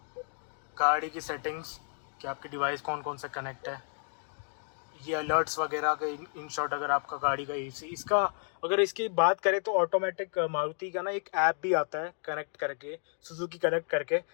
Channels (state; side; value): silent; right; 57 dB below the other